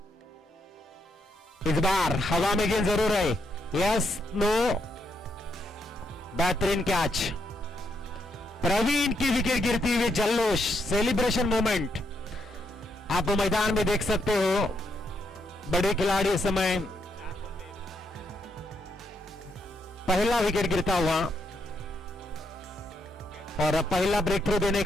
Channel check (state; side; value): normal; both; correlation 0.77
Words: इस बार हवा में गेंद जरूर है, यस नो, बेहतरीन कैच। प्रवीण की विकेट गिरती हुई जल्लोष, सेलिब्रेशन मोमेंट आप मैदान में देख सकते हो। बड़े खिलाड़ी इस समय पहला विकेट गिरता हुआ और पहला ब्रेक थ्रू देने